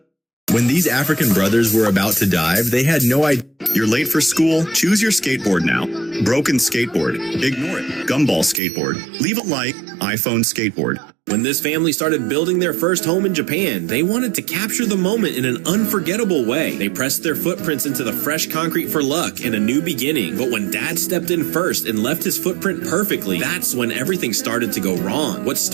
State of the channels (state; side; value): drops out; left; at 8.6 s